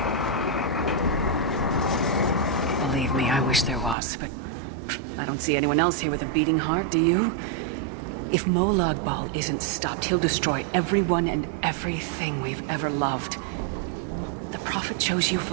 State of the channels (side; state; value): left; drops out; at 4.0 s